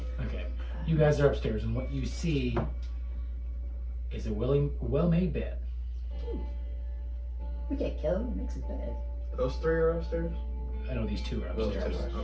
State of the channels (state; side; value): identical; both; correlation 1.00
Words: Okay. You guys are upstairs, and what you see is a well-made bed. We can't kill him. He makes his bed. Those three are upstairs? I know these 2 are Those upstairs. two are,